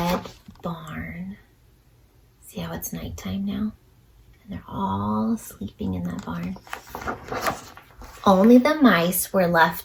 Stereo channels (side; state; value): both; identical; correlation 1.00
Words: barn. See how it's nighttime now? And they're all sleeping in that barn. Only the mice were